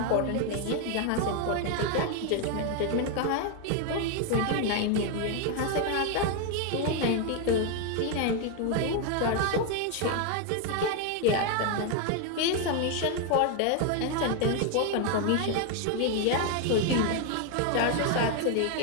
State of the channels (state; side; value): different; both; correlation 0.01